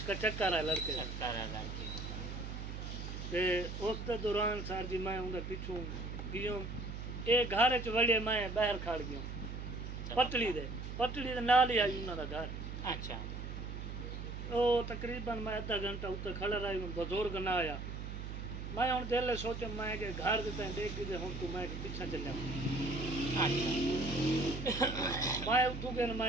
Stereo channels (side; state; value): right; noise; hum, 7 dB below the sound